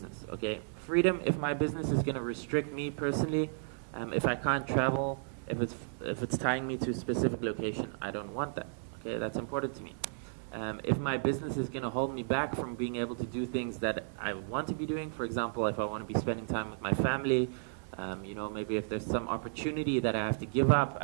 okay? Freedom, if my business is going to restrict me personally, if I can't travel, if it's tying me to a specific location, I don't want that, okay? That's important to me. If my business is going to hold me back from being able to do things that I want to be doing, for example, if I want to be spending time with my family, you know, maybe if there's some opportunity that I have to give up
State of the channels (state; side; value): silent; left; digital silence